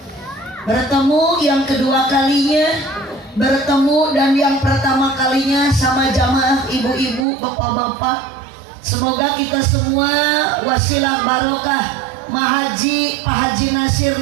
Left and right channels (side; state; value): left; drops out; at 7.2 s